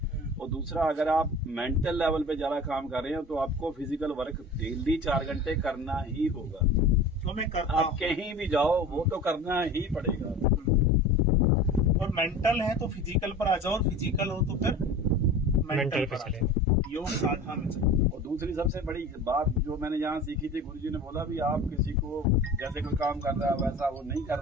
और दूसरा, अगर आप मेंटल लेवल पे ज्यादा काम कर रहे हैं तो आपको फिजिकल वर्क डेली 4 घंटे करना ही होगा। तो मैं करता आप कहीं भी जाओ वो तो करना ही पड़ेगा। और मेंटल है तो फिजिकल पर आ जाओ, और फिजिकल हो तो फिर मेंटल पर चले, योग साधना में चले। और दूसरी सबसे बड़ी बात जो मैंने यहाँ सीखी थी, गुरुजी ने बोला भी आप किसी को जैसे कोई काम कर रहा है वैसा वो नहीं कर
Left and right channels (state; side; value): normal; both; correlation 0.37